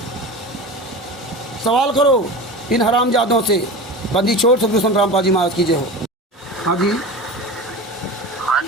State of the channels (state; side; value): normal; both; correlation 0.30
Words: सवाल करो इन हरामजादों से। बंदी छोड़ सदगुरु संत रामपाल महाराज की जय हो। हाँ जी, हाँ